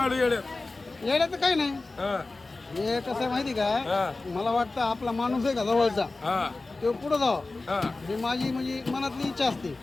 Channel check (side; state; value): right; quieter; 3.4 dB